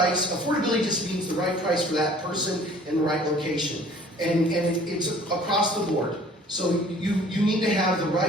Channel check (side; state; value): both; normal; correlation 0.52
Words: Affordability just means the right price for that person in the right location. And it's across the board. So you need to have the